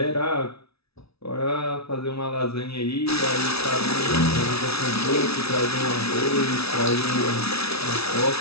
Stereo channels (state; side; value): late; right; 0.78 ms